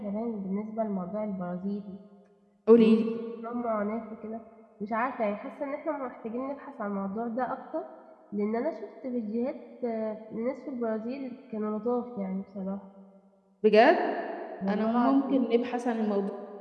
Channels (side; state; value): both; identical; correlation 1.00